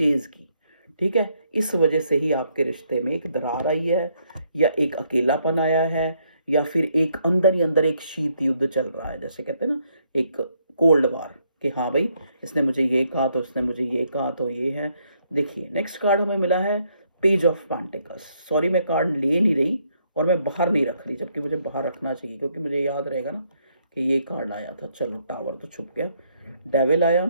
की। ठीक है, इस वजह से ही आपके रिश्ते में एक दरार आई है, या एक अकेलापन आया है, या फिर एक अंदर ही अंदर एक शीत युद्ध चल रहा है, जैसे कहते हैं ना, एक कोल्ड वार, कि हाँ भाई इसने मुझे ये कहा तो इसने मुझे ये कहा, तो ये है। देखिए नेक्स्ट कार्ड हमें मिला है पेज ऑफ पेंटिकल्स। सॉरी मैं कार्ड ले नहीं रही और मैं बाहर नहीं रख रही, जबकि मुझे बाहर रखना चाहिए, क्योंकि मुझे याद रहेगा ना कि ये कार्ड आया था। चलो, टावर तो छुप गया, डेविल आया,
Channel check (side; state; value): both; inverted; correlation -0.72